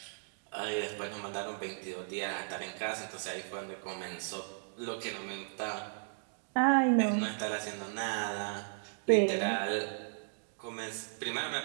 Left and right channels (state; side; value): silent; left; digital silence